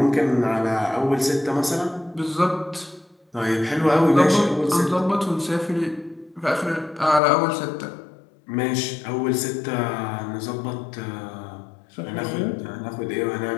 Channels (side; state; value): right; drops out; at 7.2 s